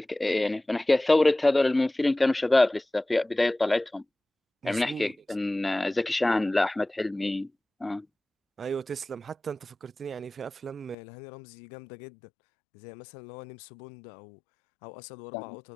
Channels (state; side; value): drops out; right; at 11.0 s